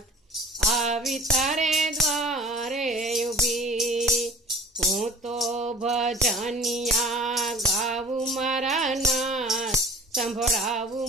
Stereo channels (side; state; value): both; normal; correlation 0.45